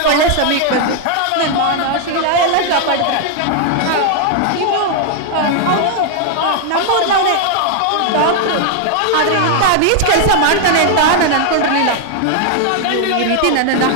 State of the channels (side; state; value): both; different; correlation 0.00